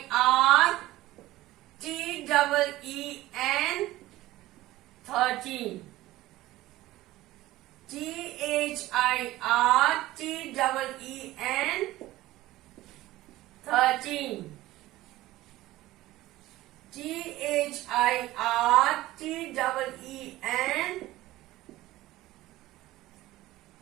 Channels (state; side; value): quieter; left; 16.8 dB